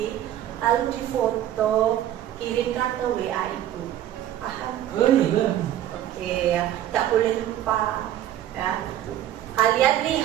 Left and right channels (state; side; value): quieter; left; 12.0 dB